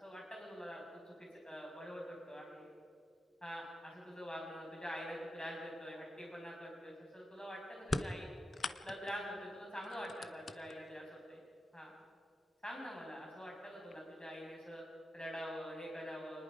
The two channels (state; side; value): normal; both; correlation 0.88